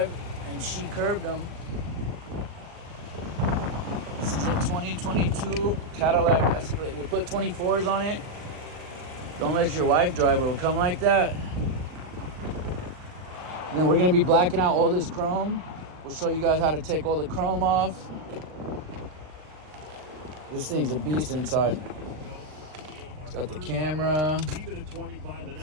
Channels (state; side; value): late; left; 39 ms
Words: and she curbed him. This is a 2022 Cadillac Escalade. We put 24s on it. Don't let your wife drive, it'll come like that. And then we're gonna be blacking out all this chrome. We'll show you guys how to take all the chrome off. This thing's a beast inside. It's got the camera. It's